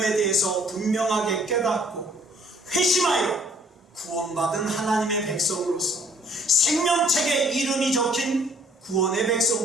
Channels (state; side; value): normal; both; correlation 0.60